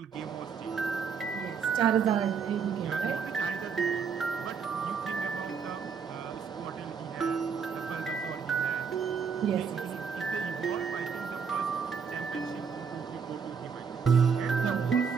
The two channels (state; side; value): quieter; left; 6.2 dB